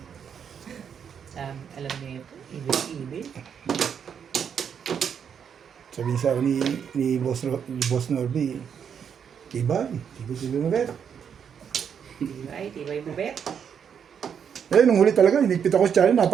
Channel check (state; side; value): quieter; left; 7.6 dB